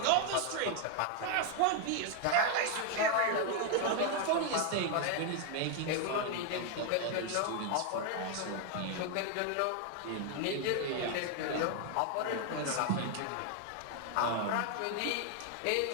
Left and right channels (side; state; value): both; different; correlation 0.00